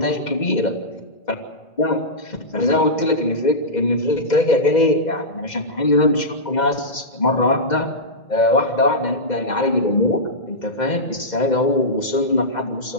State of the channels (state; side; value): late; right; 2.1 ms